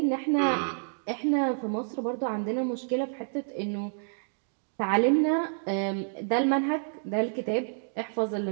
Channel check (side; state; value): left; silent; digital silence